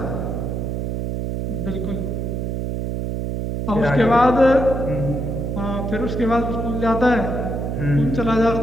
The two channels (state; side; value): noise; right; hum, 2 dB below the sound